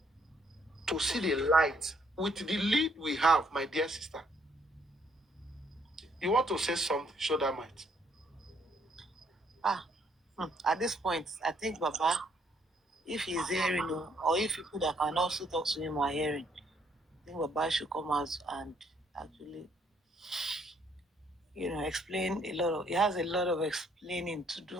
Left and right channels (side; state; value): both; normal; correlation 0.69